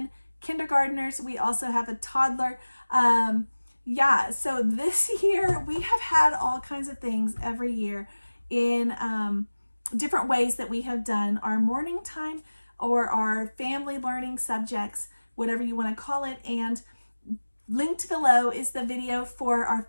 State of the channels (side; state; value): both; inverted; correlation -1.00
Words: kindergartners. We also have a toddler. So this year we have had all kinds of things every year in different ways that we have done our morning time or our family learning subjects, whatever you want to call it. And linked below is the video for our